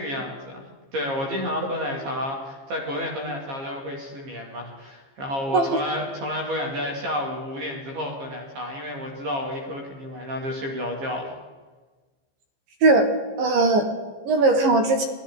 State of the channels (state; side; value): late; left; 15 ms